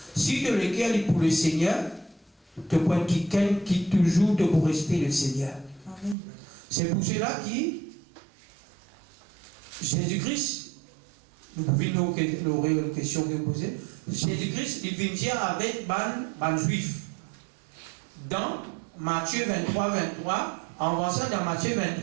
Si de l'équerre est pour le Seigneur, tu prends quelqu'un qui toujours te pour rester le Seigneur. C'est pour cela que Jésus-Christ, nous pouvons nous une question que vous posez. Jésus-Christ, il vient dire avec les Juifs. Dans Matthieu 23, en avançant dans Matthieu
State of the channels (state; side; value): drops out; left; at 6.2 s